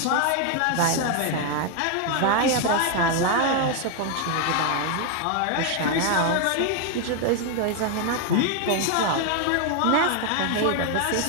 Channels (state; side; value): different; both; correlation 0.01